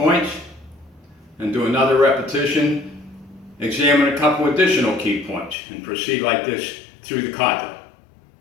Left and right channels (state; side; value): drops out; right; at 5.6 s